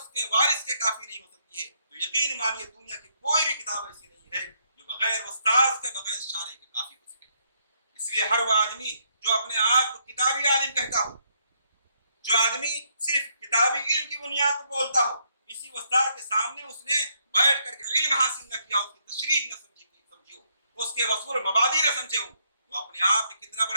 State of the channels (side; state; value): both; inverted; correlation -0.73